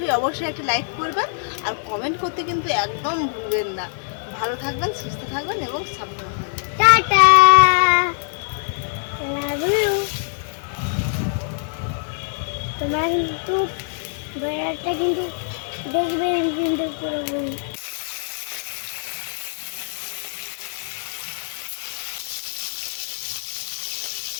একটা লাইক করবেন আর কমেন্ট করতে কিন্তু একদম ভুলবেন না। ভালো থাকবেন, সুস্থ থাকবেন এবং সাবধানে থাকবেন। Tata, love you. তোমরা কিন্তু ভিডিওটা কিন্তু দেখবেন কিন্তু পুরো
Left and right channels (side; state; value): right; silent; 61 dB below the other